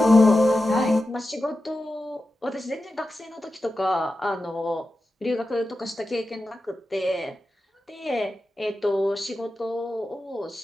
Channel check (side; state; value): both; normal; correlation 0.92